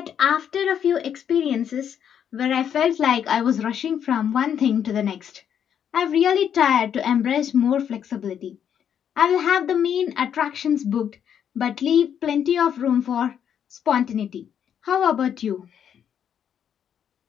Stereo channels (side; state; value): right; quieter; 8.7 dB